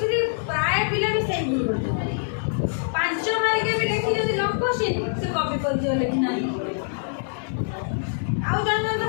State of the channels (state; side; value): silent; right; digital silence